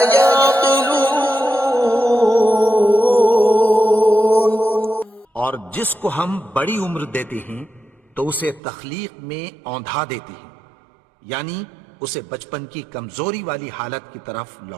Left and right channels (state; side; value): drops out; left; at 8.6 s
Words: يعقلون. اور جس کو ہم بڑی عمر دیتے ہیں تو اسے تخلیق میں اوندھا دیتے ہیں، یعنی اسے بچپن کی کمزوری والی حالت کی طرف